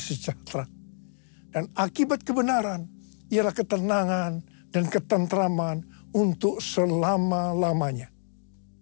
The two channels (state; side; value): silent; right; digital silence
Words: Dan akibat kebenaran ialah ketenangan dan ketentraman untuk selama-lamanya.